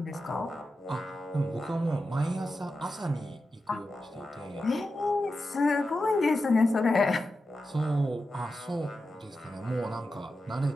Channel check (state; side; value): normal; both; correlation 0.90